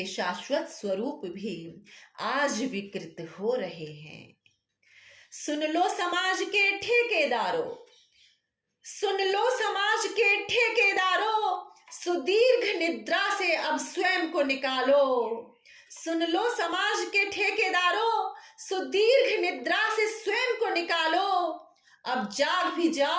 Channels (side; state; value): both; identical; correlation 1.00